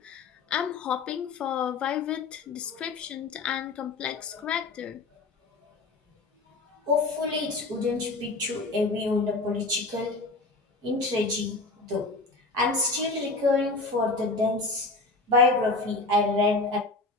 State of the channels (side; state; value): right; quieter; 3.5 dB